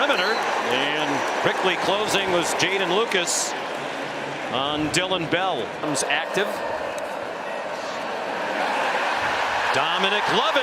and quickly closing was Jaden Lucas on Dylan Bell. Comes active. Dominic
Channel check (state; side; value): identical; both; correlation 1.00